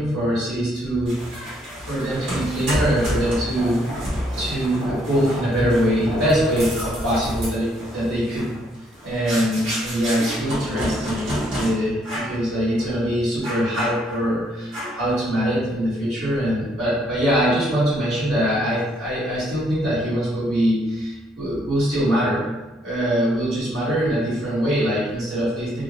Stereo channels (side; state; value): both; normal; correlation 0.70